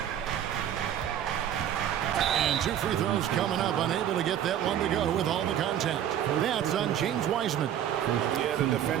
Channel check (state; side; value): quieter; left; 10.4 dB